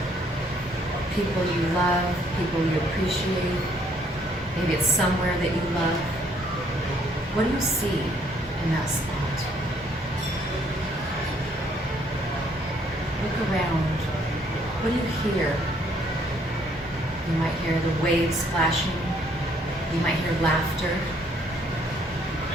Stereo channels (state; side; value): normal; both; correlation 0.66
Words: people you love, people you appreciate. Maybe it's somewhere that you love. What do you see in that spot? Look around. What do you hear? You might hear the waves splashing. You might hear laughter.